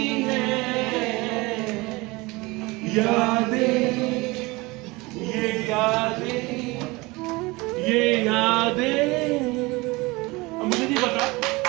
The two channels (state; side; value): quieter; left; 23.2 dB